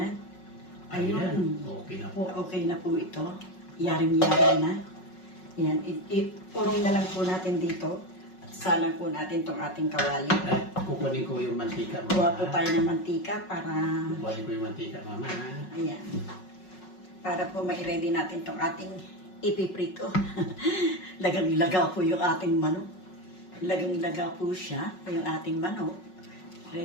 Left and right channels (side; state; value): right; late; 5.4 ms